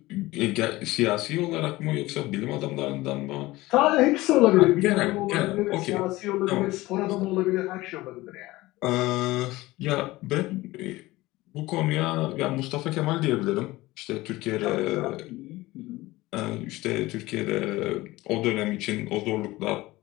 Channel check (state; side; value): quieter; right; 19.1 dB